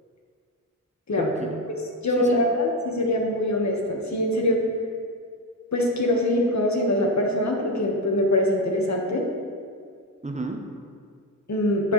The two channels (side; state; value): both; normal; correlation 0.11